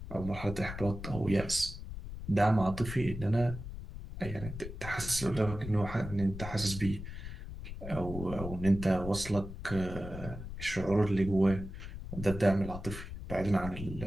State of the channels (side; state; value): left; noise; rumble, 9 dB below the sound